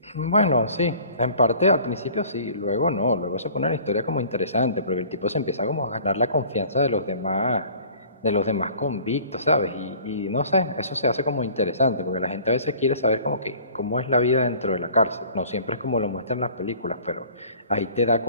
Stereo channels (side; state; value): both; inverted; correlation -0.49